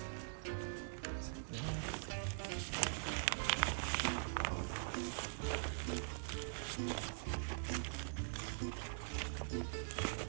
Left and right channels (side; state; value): left; silent; digital silence